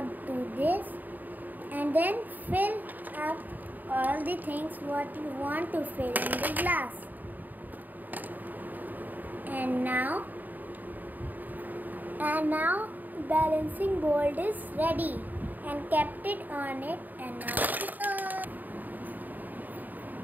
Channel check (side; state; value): left; late; 0.086 ms